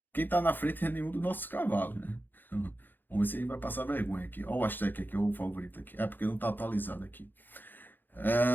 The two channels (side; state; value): right; late; 0.091 ms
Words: quem tá na frente é nenhum dos nossos cavalos, né? Vamos ver se ele vai passar vergonha aqui. Olha o Aztec aqui, o favorito aqui. É porque não tá atualizado aqui.